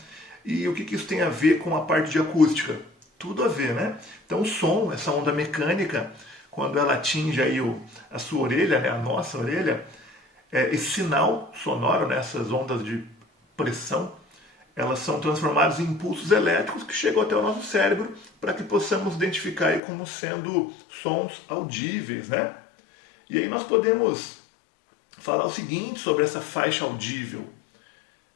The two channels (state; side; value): drops out; right; at 19.8 s